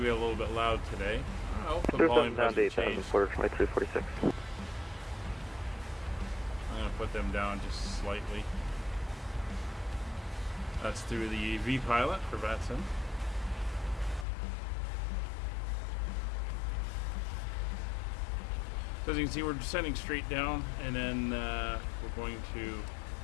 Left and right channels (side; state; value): right; drops out; at 14.2 s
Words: a little bit loud today. Oh, the volume down to hasn't 8,000, changed. Porter 2346. I'm going to put them down just slightly. That's through the V-Pilot for Vatson. So as you can see, we're descending straight down, and then we're going to